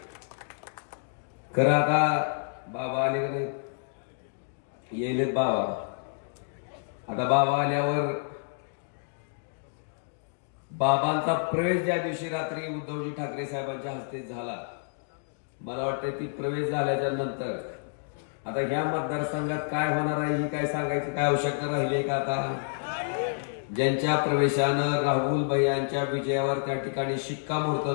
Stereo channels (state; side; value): silent; right; digital silence